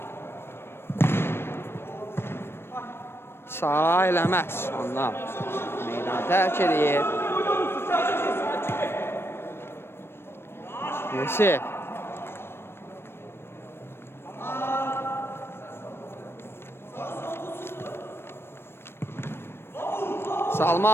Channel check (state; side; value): late; right; 0.12 ms